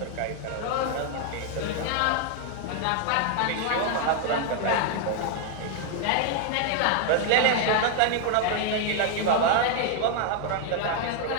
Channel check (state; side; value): different; both; correlation 0.00